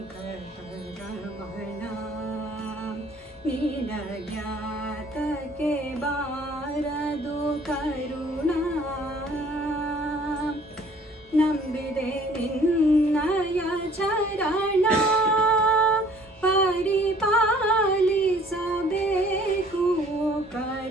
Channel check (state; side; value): normal; both; correlation 0.55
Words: ನಿನಗ್ಯಾತಕ್ಕೆ ಬಾರದು ಕರುಣ, ನಂಬಿದೆ ನಿನ್ನಯ ಚರಣ, ಪರಿಪಾಲಿಸಬೇಕು